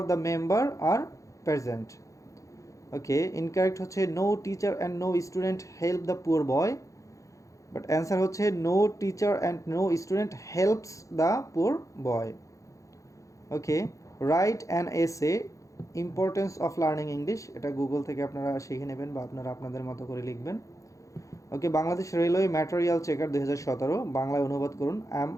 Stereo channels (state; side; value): late; right; 0.15 ms